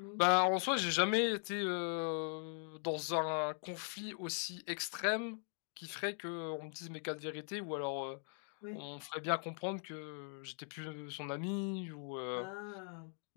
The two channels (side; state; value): right; silent; 51 dB below the other